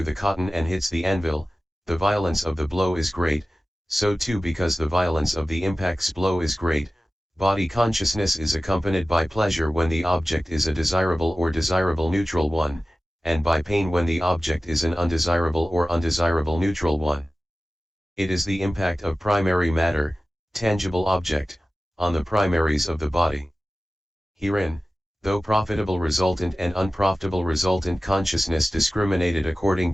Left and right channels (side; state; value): both; normal; correlation 0.96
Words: the cotton and hits the anvil, the violence of the blow is great, so too because the violence of the impact's blow is great, body consciousness is accompanied by pleasure when the object is a desirable or desirable neutral one, and by pain when the object is an undesirable or undesirable neutral one. It is the impact of primary matter, tangible object, on the primaries of the body. Herein, though profitable resultant and unprofitable resultant consciousness discriminated according